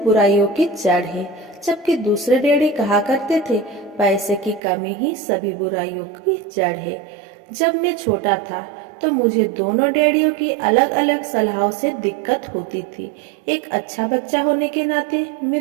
की जड़ है, जबकि दूसरे डैडी कहा करते थे, पैसे की कमी ही सभी बुराइयों की जड़ है। जब मैं छोटा था तो मुझे दोनों डैडियों की अलग अलग सलाहों से दिक्कत होती थी। एक अच्छा बच्चा होने के नाते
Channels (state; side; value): drops out; left; at 4.6 s